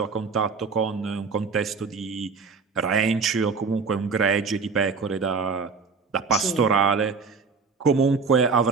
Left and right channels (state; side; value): quieter; left; 5.0 dB